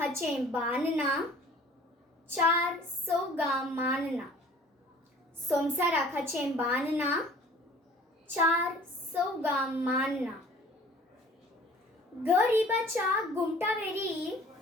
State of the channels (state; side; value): normal; both; correlation 0.50